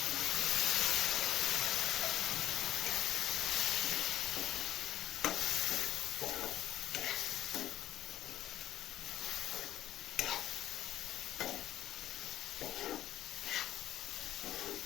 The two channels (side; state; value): right; quieter; 12.9 dB